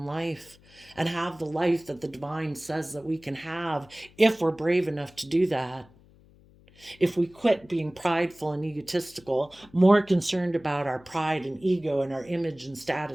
life and have the life that the divine says that we can have if we're brave enough to do that. If we quit being prideful and egotistical, more concerned about our pride and ego and our image and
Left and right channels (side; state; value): left; noise; hum, 27 dB below the sound